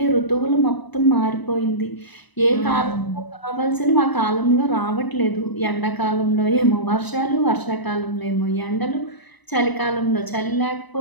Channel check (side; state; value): right; late; 1.0 ms